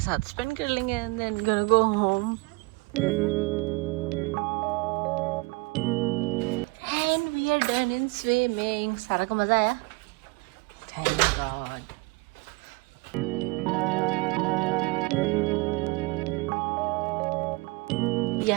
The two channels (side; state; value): left; quieter; 26.5 dB